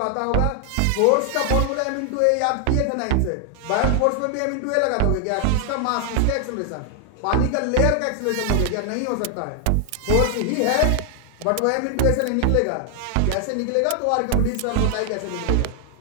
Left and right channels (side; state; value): both; different; correlation 0.00